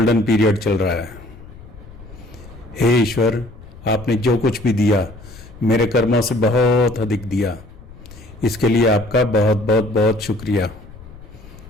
पीरियड चल रहा है। हे ईश्वर, आपने जो कुछ भी दिया मेरे कर्मों से बहुत अधिक दिया, इसके लिए आपका बहुत बहुत बहुत शुक्रिया।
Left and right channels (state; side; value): noise; left; rumble, 18 dB below the sound